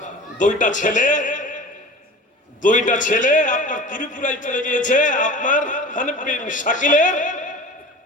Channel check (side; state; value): both; normal; correlation 0.39